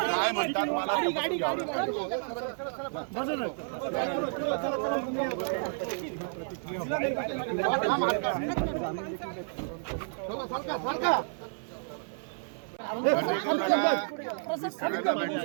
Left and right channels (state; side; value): silent; left; 57 dB below the other